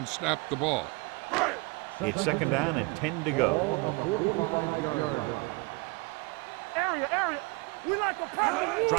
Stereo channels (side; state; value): left; quieter; 26.9 dB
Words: snapped the ball. It's 2nd down and 10 to go. Ball on the 45-yard line. Area. We like a pass.